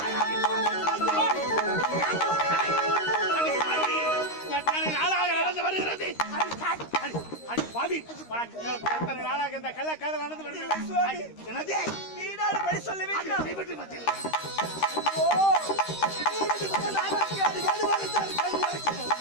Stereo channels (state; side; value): late; right; 13 ms